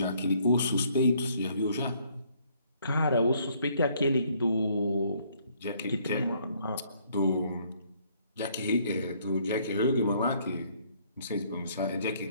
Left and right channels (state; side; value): inverted; both; correlation -0.65